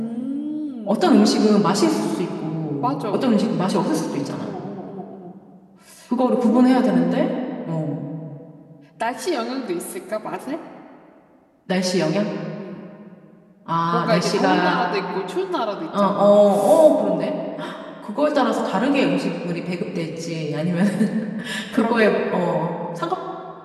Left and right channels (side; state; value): both; identical; correlation 1.00